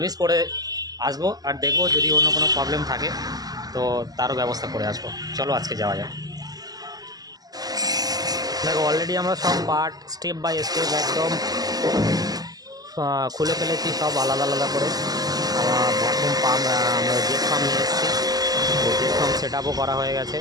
করে আসবো আর দেখবো যদি অন্য কোনো প্রবলেম থাকে তো তারও ব্যবস্থা করে আসবো। চলো আজকে যাওয়া যাক। দেখো অলরেডি আমরা সব পার্ট স্টেপ বাই স্টেপ একদম খুলে ফেলেছি, সব আলাদা আলাদা করে। আমার ভ্যাকুম পাম্প, আমরা জেট পাম্প নিয়ে এসেছি, জেট পাম্প সেট আপও করা হয়ে গেছে,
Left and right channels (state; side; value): late; left; 0.18 ms